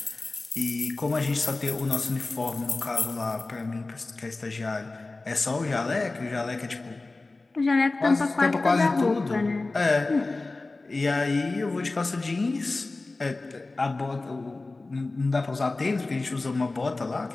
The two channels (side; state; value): right; quieter; 3.3 dB